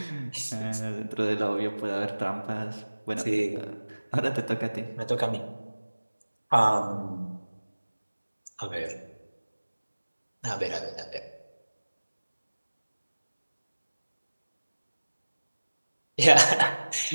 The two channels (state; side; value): inverted; both; correlation -1.00